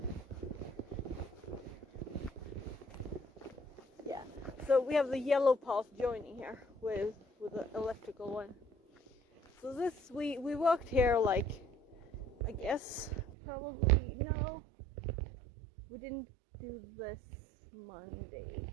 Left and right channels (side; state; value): left; drops out; at 13.2 s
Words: Yeah. So we have the yellow path joining here with the electrical one. So this, we walked here like, I guess, probably, no, we didn't do this Monday.